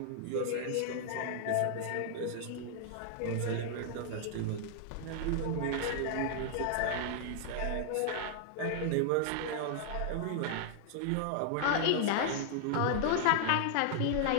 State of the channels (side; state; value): both; different; correlation 0.00